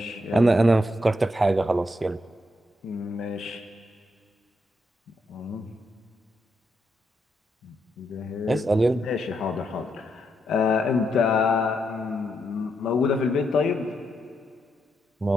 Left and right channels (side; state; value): both; normal; correlation 0.80